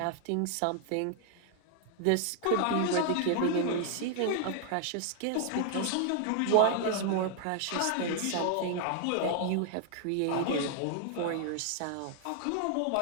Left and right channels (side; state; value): both; different; correlation 0.00